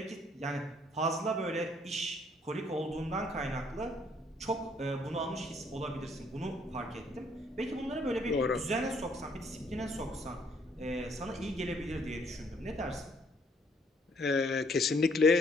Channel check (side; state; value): both; normal; correlation 0.65